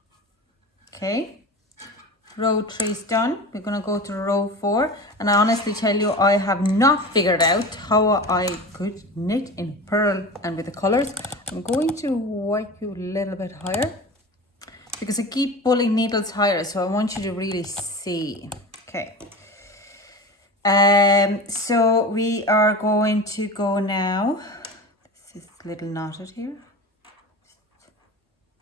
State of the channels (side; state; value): both; normal; correlation 0.31